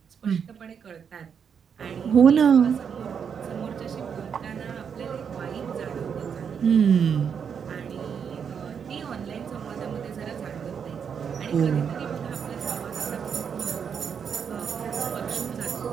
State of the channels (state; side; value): quieter; left; 7.1 dB